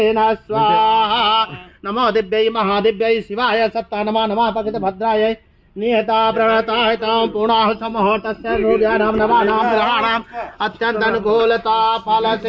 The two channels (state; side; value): identical; both; correlation 1.00